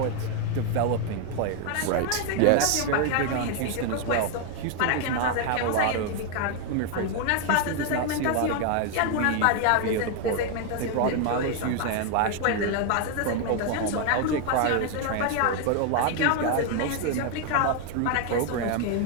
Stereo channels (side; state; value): both; different; correlation 0.01